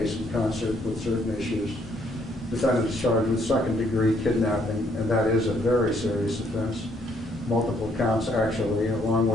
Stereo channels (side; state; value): both; normal; correlation 0.69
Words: in concert with certain issues. Defendant is charged with second-degree kidnapping, and that is a very serious offense. Multiple counts, actually, along